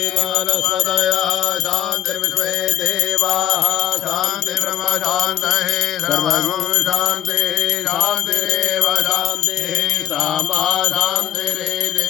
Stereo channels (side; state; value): right; quieter; 10.9 dB